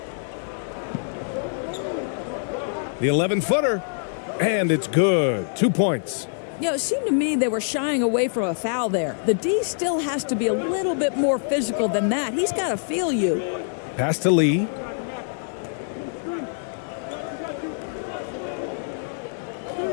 The 11-footer, and it's good. 2 points. You know, it seemed to me they were shying away from a foul there. The D still has to be a little bit more physical than that. He's got to feel you. Pass to Lee.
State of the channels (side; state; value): right; silent; 62 dB below the other